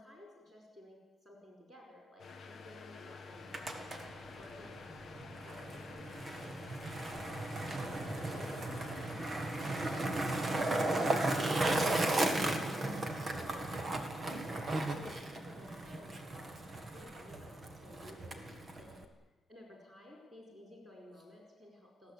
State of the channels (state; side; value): normal; both; correlation 0.84